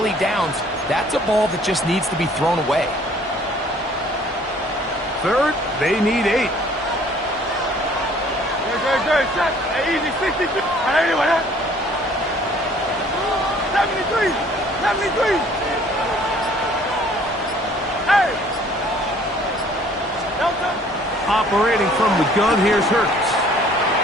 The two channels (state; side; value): normal; both; correlation 0.56